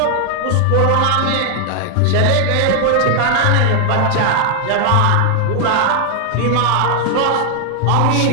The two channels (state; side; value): different; both; correlation 0.00